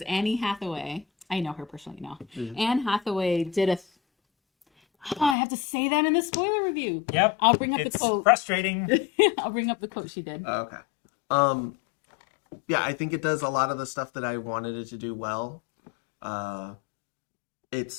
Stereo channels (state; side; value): drops out; right; at 5.4 s